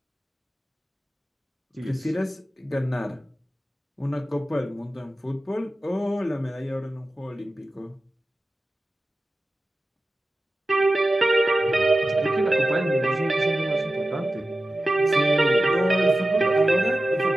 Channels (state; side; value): normal; both; correlation 0.94